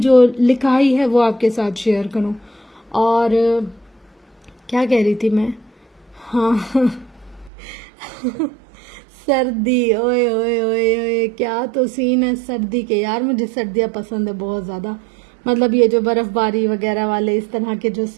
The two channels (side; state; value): left; drops out; at 7.5 s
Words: جو لکھائی ہے وہ آپ کے ساتھ شیئر کروں۔ اور کیا کہہ رہی تھی میں؟ ہاں سردی، اوئے اوئے اوئے اوئے کیا تو سین ہے سردی کے، یار مجھے سردیاں پسند ہے بہت زیادہ، مطلب یہ جو برف باری وغیرہ والے اس طرح کے جو